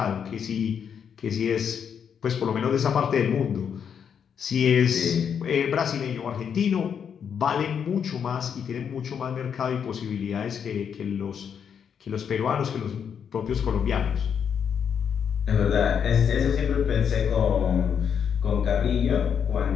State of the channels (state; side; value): quieter; right; 7.6 dB